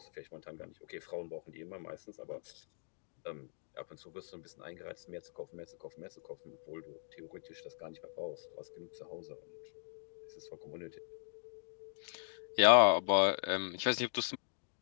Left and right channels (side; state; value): right; silent; digital silence